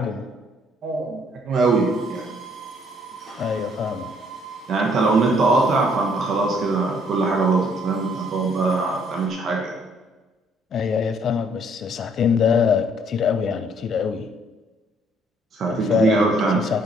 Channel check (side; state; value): both; normal; correlation 0.64